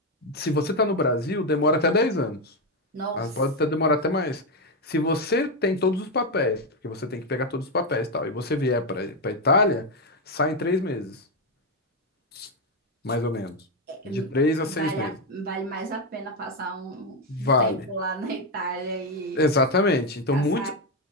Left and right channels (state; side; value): normal; both; correlation 0.07